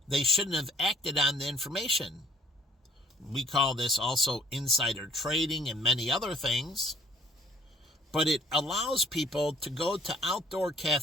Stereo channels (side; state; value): both; normal; correlation 0.56